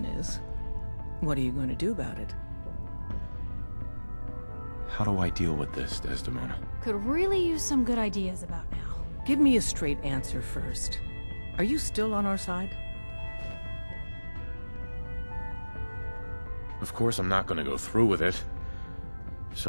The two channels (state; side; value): inverted; both; correlation -1.00